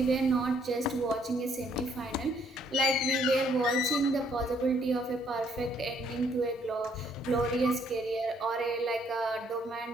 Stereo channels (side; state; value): both; normal; correlation 0.67